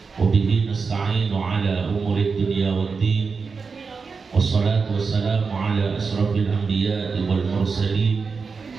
Wa bihi nasta'inu ala umuri dunya waddin. Wassalatu wassalamu ala asrafil anbiya'i wal mursalin.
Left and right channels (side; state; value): left; quieter; 5.0 dB